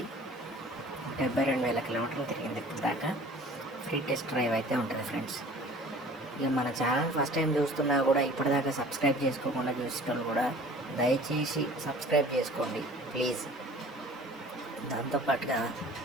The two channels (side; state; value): both; normal; correlation 0.48